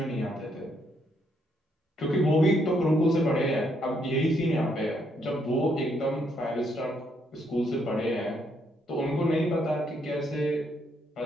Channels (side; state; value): both; normal; correlation 0.73